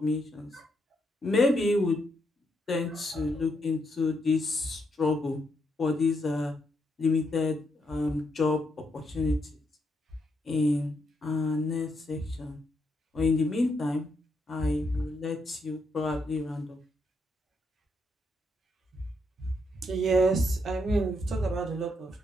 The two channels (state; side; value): normal; both; correlation 0.78